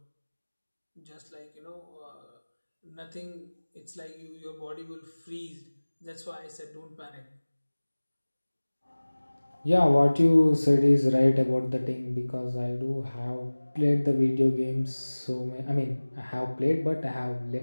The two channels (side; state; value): both; inverted; correlation -1.00